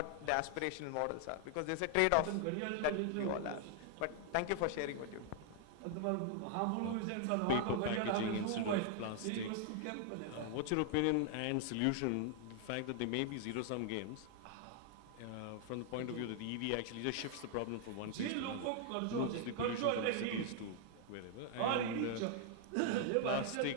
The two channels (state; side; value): different; both; correlation 0.00